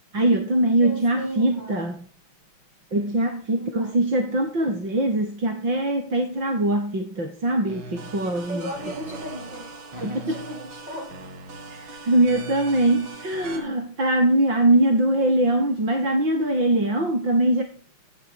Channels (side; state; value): left; late; 5.7 ms